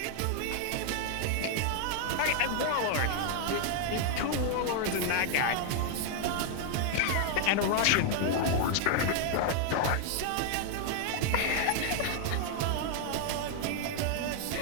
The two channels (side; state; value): both; different; correlation 0.00